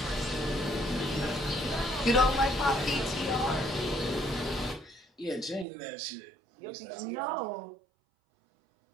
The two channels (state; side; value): drops out; left; at 5.7 s